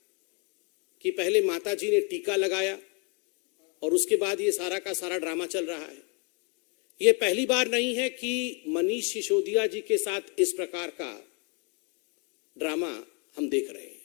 कि पहले माताजी ने टीका लगाया और उसके बाद ये सारा का सारा ड्रामा चल रहा है। ये पहली बार नहीं है कि मनीष सिसोदिया जी के साथ इस प्रकार का ड्रामा हम देख रहे हैं।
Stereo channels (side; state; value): right; quieter; 35.2 dB